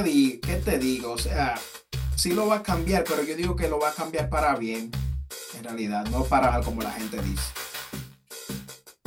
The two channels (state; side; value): identical; both; correlation 1.00